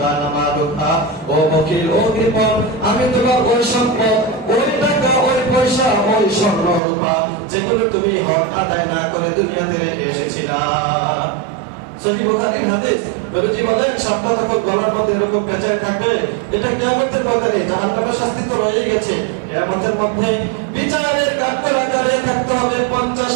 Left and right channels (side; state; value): left; drops out; at 6.8 s